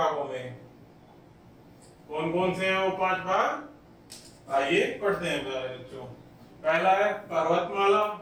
में। कौन कौन से हैं वो 5 भाग? आइए पढ़ते हैं प्यारे बच्चों। पहला है पर्वतमाला,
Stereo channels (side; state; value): both; identical; correlation 1.00